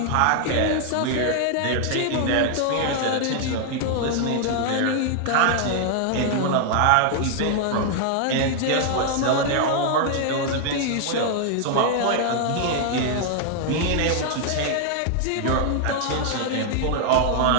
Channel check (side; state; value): both; different; correlation 0.00